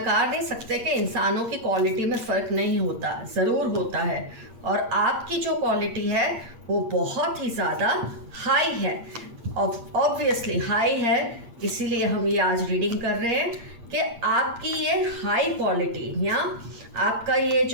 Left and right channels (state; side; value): late; left; 8.5 ms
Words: नहीं सकते कि इंसानों की क्वालिटी में फ़र्क नहीं होता, ज़रूर होता है। और आपकी जो क्वालिटी है वो बहुत ही ज़्यादा हाई है, ऑब्वियसली हाई है। इसीलिए हम ये आज रीडिंग कर रहे हैं कि आपकी ये हाई क्वालिटी या आपका ये